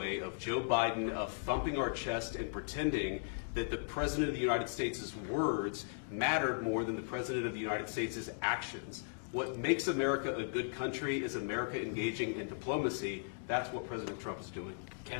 of Joe Biden of thumping our chest and pretending that the President of the United States' words mattered more than the President of the United States' actions. What makes America a good country is America engaging in diplomacy. That's what President Trump is doing. Can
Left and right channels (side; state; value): right; silent; digital silence